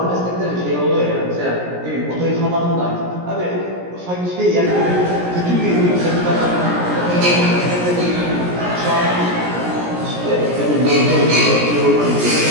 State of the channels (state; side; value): late; left; 17 ms